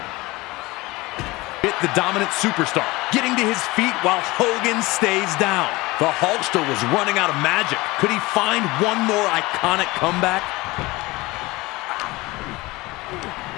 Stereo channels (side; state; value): right; quieter; 21.4 dB